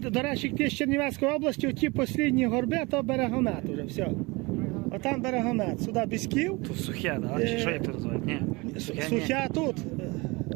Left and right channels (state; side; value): quieter; left; 25.1 dB